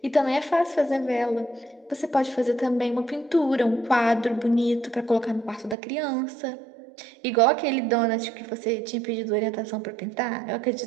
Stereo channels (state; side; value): drops out; left; at 5.8 s